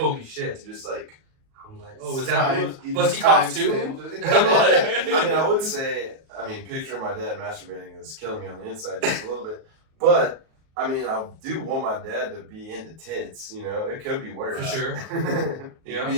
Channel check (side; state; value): left; late; 37 ms